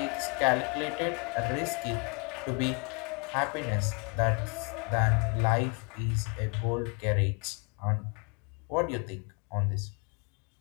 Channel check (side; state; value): right; quieter; 34.6 dB